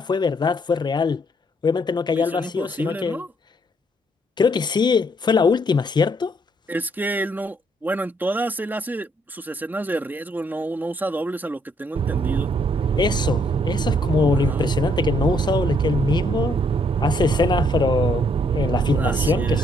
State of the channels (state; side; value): normal; both; correlation 0.70